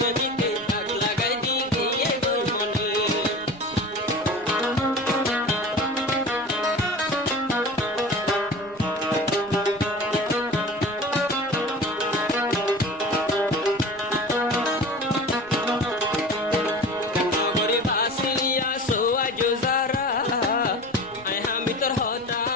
ডাক লাগাই দি গিয়ে গই মনে নগরে বাসিয়া সোয়াজ যারা আই হামি তোর হতা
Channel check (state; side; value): noise; right; rumble, 24 dB below the sound